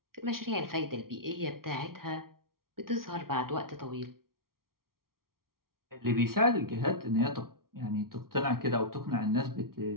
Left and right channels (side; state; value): left; late; 0.93 ms